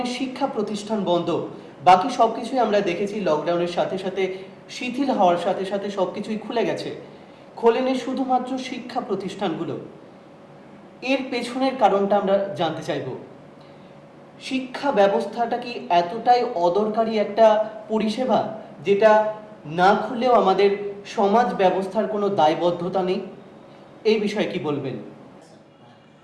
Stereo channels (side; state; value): both; identical; correlation 1.00